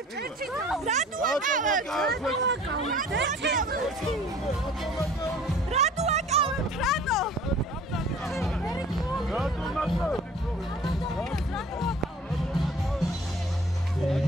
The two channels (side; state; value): both; normal; correlation 0.49